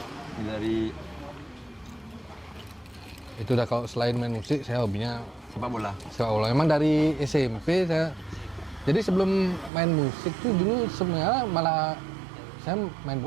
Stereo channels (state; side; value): drops out; left; at 9.7 s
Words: Ini dari Itu udah kalau selain main musik, saya hobinya sepak bola. sepak bola. Memang dari SMP saya. Jadi sebelum main musik tuh dulu sebenarnya malah saya main